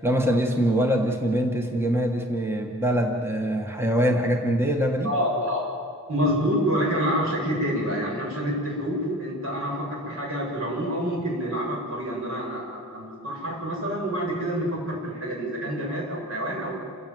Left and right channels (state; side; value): normal; both; correlation 0.47